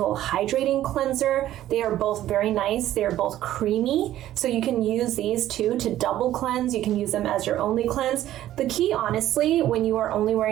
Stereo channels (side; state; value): left; quieter; 13.2 dB